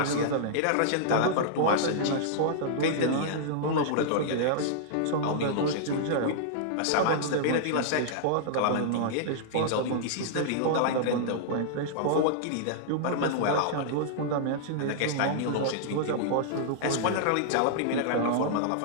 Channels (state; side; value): different; both; correlation -0.02